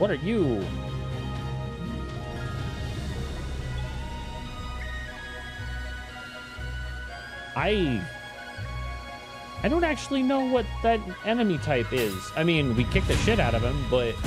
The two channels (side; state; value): both; identical; correlation 1.00